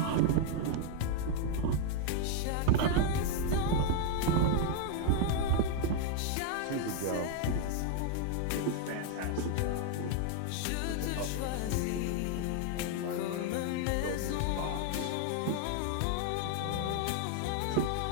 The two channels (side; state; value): both; different; correlation 0.00